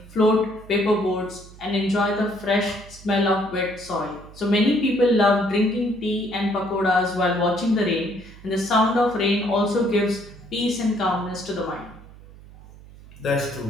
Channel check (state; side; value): noise; right; hum, 20 dB below the sound